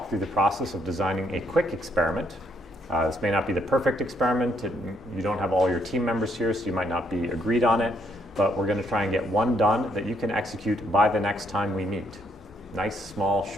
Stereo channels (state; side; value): normal; both; correlation 0.70